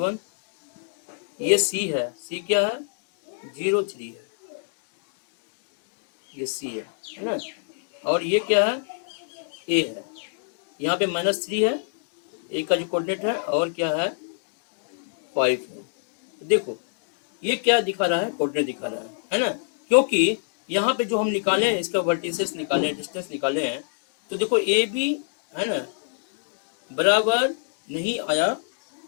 ये सी है, सी क्या है 0/3, ये सी है ना। और ये क्या है ए है, यहाँ पे -3 है, ए का जो कोऑर्डिनेट है, और क्या है 5 है। देखो ये क्या दिखा रहा है, कोऑर्डिनेट दिखा रहा है ना। क्योंकि यहाँ पे जो हम निकाले हैं, इसका वर्टिसेस निकाले, डिस्टेंस निकाले हैं, तो देखो ए बी है ना बराबर नहीं आया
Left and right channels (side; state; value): right; silent; digital silence